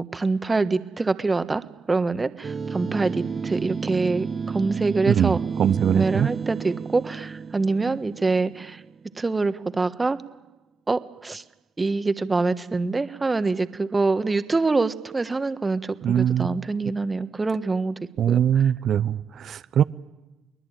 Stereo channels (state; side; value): quieter; left; 4.6 dB